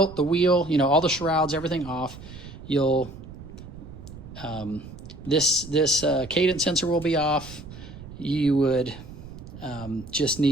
the wheel, you know, all the shrouds, everything off, you'll this cadence sensor will be off. You would just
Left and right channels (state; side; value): noise; right; rumble, 15 dB below the sound